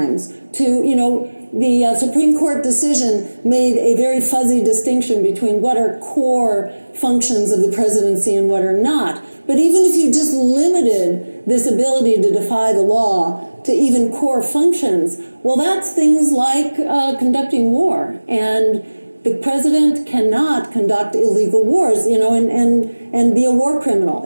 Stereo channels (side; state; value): both; inverted; correlation -1.00